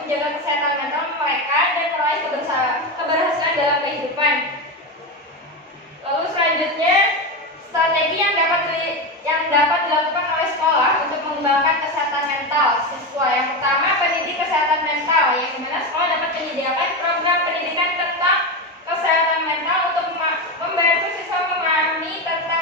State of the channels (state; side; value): normal; both; correlation 0.16